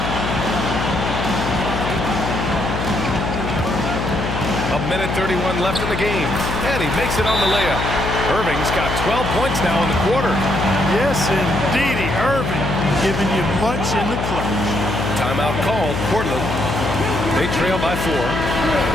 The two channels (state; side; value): noise; left; hum, 3 dB below the sound